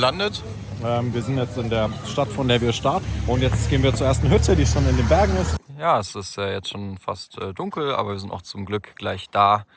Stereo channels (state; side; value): identical; both; correlation 1.00